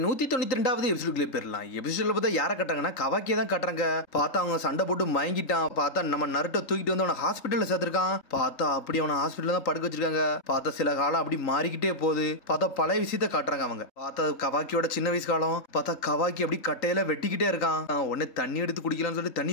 192வது எபிசோடுக்குள்ளே போயிடலாம். எபிசோட்ல பார்த்தா யாரை கட்டுறாங்கன்னா கவாக்கியை தான் கட்டுறாங்க. பார்த்தா அவங்க சண்டை போட்டு மயங்கிட்டான். பார்த்தா நம்ம நருட்டோ தூக்கிட்டு வந்து அவனை ஹாஸ்பிட்டல்ல சேர்த்திருக்கான். பார்த்தா அப்படி அவனை ஹாஸ்பிட்டல் தான் படுக்க வச்சிருக்காங்க. பார்த்தா சில காலம் அப்படி மாறிக்கிட்டே போகுது. பார்த்தா பழைய விஷயத்த காட்டுறாங்க அவங்க. பார்த்தா கவாக்கியோட சின்ன வயசு காலம். பார்த்தா கவாக்கி அப்படி கட்டையில வெட்டிக்கிட்டே இருக்கான். உடனே தண்ணி எடுத்து குடிக்கலாம்னு சொல்லிட்டு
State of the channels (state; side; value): late; right; 3.8 ms